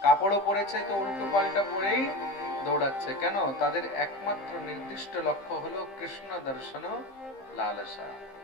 কাপড়ও পরেছে তো উল্টো পাল্টা পরেই দৌড়াচ্ছে। কেন? তাদের একমাত্র নির্দিষ্ট লক্ষ্য হলো কৃষ্ণ দর্শন লালসা,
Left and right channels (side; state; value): right; late; 15 ms